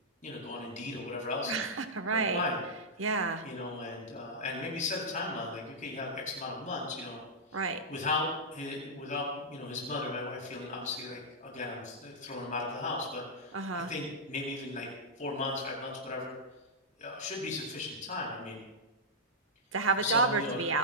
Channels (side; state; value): both; normal; correlation -0.08